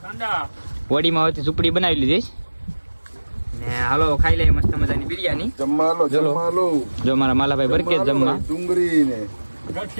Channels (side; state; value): both; inverted; correlation -1.00